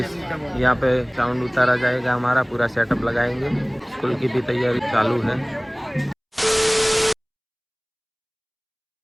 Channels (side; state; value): both; identical; correlation 1.00